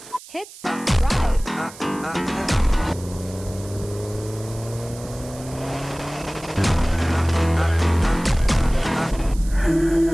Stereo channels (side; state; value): right; noise; hiss, 18 dB below the sound